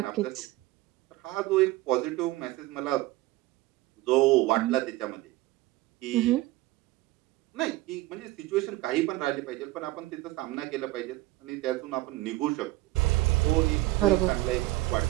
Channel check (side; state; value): left; quieter; 18.4 dB